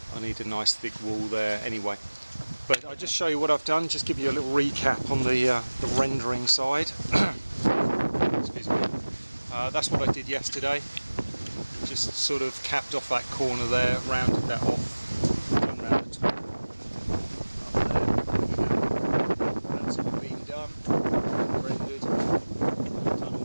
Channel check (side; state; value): both; inverted; correlation -1.00